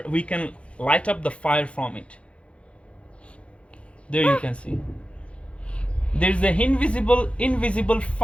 we can light up the fire from it. There you can see. There's the invisible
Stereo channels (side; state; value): right; late; 0.061 ms